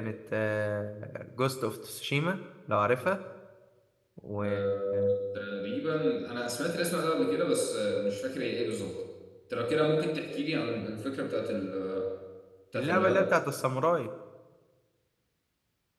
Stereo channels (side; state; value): both; identical; correlation 1.00